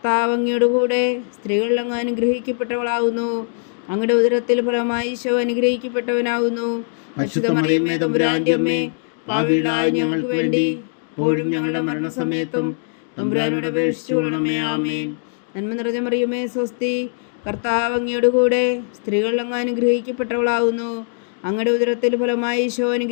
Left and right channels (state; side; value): silent; right; digital silence